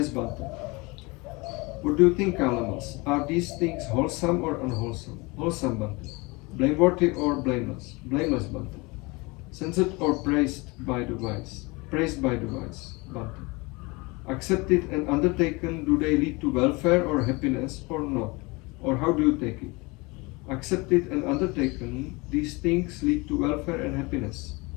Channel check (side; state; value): right; quieter; 25.7 dB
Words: Bante. What do you think, Kalamas? Are these things wholesome or unwholesome? Wholesome, Bante. Blameworthy or blameless? Blameless, Bante. Censored or praised by the wise? Praised by the wise, Bante. Accepted and undertaken, do they lead to welfare or happiness or not? Or how do you take it? Accepted and undertaken, these things lead to welfare and happiness.